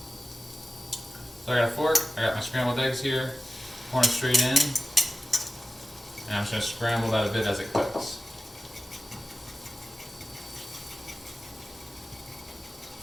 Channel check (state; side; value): normal; both; correlation 0.95